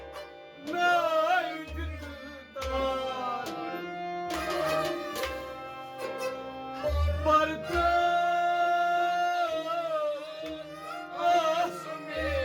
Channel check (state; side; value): identical; both; correlation 1.00